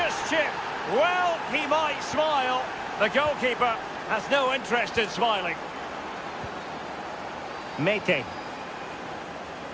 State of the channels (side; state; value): both; identical; correlation 1.00